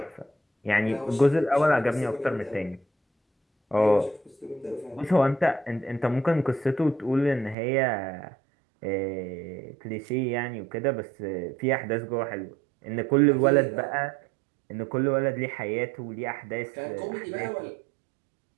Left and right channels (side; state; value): left; drops out; at 7.6 s